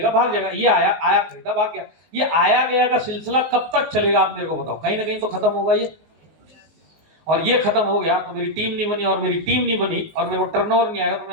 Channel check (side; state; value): left; late; 19 ms